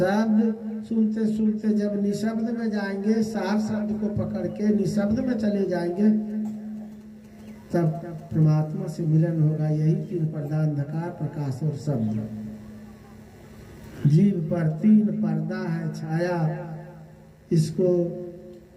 सुनते सुनते जब निशब्द में जाएंगे, सार शब्द को पकड़ के निशब्द में चले जाएंगे, तब परमात्मा से मिलन होगा। यही 3 पर्दा, अंधकार, प्रकाश और शब्द। जीव पर 3 पर्दा है छाया, इसको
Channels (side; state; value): both; identical; correlation 1.00